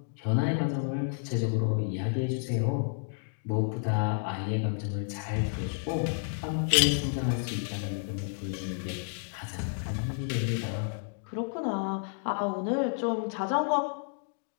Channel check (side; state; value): right; silent; digital silence